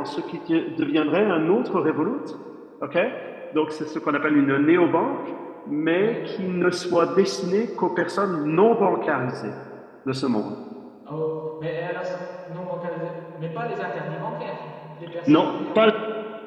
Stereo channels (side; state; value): both; identical; correlation 1.00